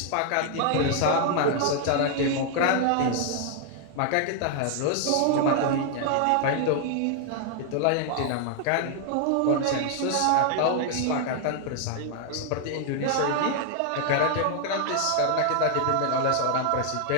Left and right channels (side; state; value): both; different; correlation 0.00